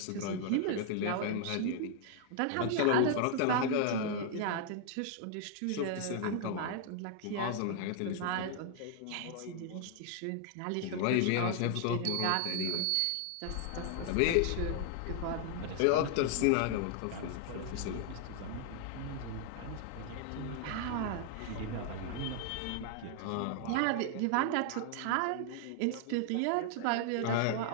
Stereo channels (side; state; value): both; different; correlation 0.00